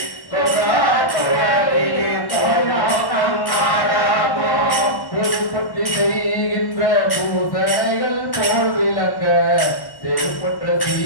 பொறுப்பற்றி செய்கின்ற பூசைகள் போல் விளங்க செருப்பற்ற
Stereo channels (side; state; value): right; late; 1.1 ms